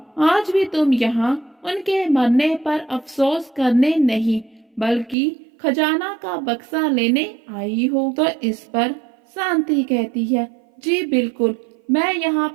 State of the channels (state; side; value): drops out; left; at 5.2 s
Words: आज भी तुम यहाँ उनके मरने पर अफसोस करने नहीं, बल्कि खजाना का बक्सा लेने आई हो। तो इस पर शांति कहती है, जी बिल्कुल, मैं यहाँ